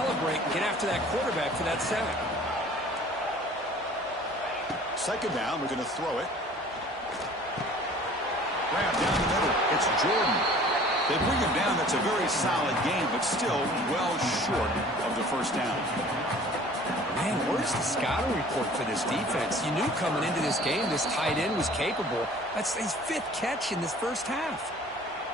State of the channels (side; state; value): both; normal; correlation 0.49